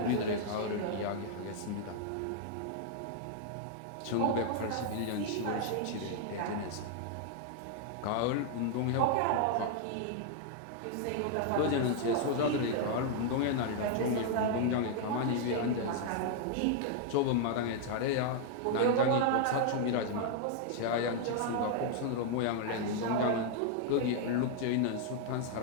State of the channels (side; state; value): both; different; correlation 0.00